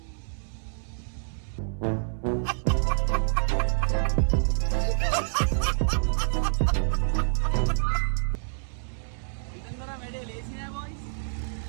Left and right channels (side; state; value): left; silent; 60 dB below the other